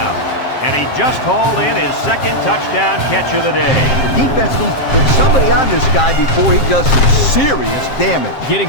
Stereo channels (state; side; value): late; right; 7.5 ms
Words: And he just hauled in his second touchdown catch of the day. The defense needs to put somebody on this guy before he does some serious damage. Getting